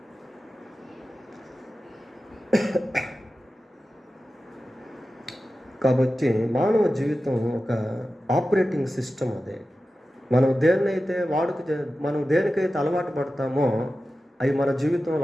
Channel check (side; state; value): both; normal; correlation 0.93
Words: కాబట్టి మానవ జీవితం ఒక ఆపరేటింగ్ సిస్టమ్. అదే మనం దేనికైతే అలవాటు పడతామో అవి మన